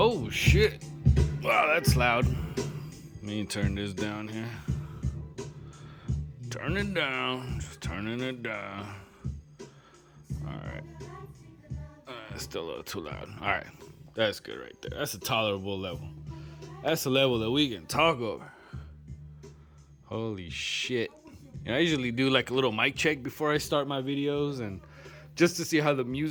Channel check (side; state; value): both; identical; correlation 1.00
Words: Oh shit. Wow, that's loud. Let me turn this down here. Turn it down. Just turning it down. Alright. Still a little too loud. Alright. That's good right there. That's a tolerable level. That's a level that we can talk over. Holy shit. And I usually do like a little mic check before I start my videos, and just to see how the